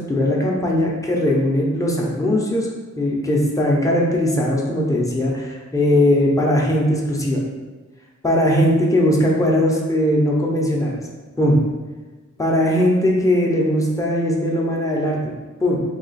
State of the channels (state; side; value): normal; both; correlation 0.61